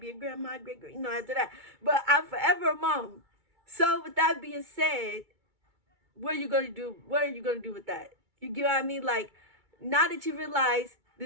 a grandma, great, after that. But I'm forever a mom. So with that being said, what are you going to do? What are you going to do with that? You get what I mean? Like, now that you realize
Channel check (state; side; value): late; left; 2.3 ms